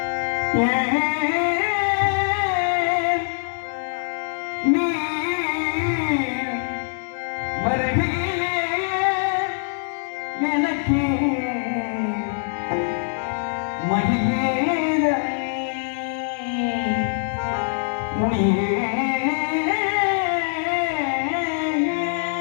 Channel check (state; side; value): silent; right; digital silence